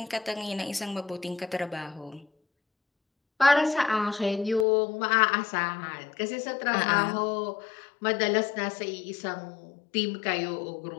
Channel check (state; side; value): drops out; right; at 4.7 s